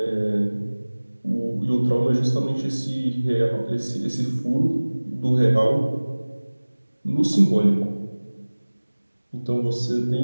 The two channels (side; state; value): both; inverted; correlation -1.00